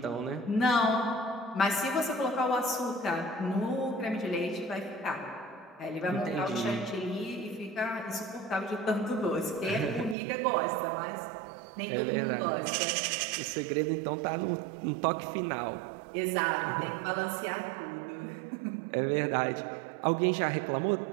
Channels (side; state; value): left; drops out; at 10.2 s